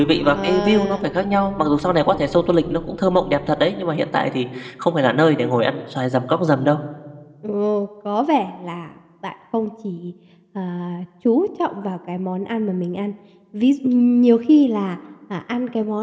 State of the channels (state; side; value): identical; both; correlation 1.00